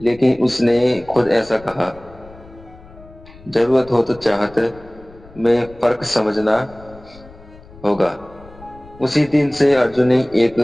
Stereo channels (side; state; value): left; noise; rumble, 22 dB below the sound